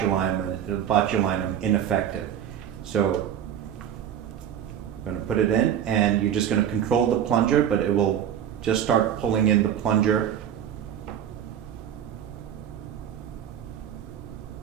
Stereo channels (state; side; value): quieter; left; 9.6 dB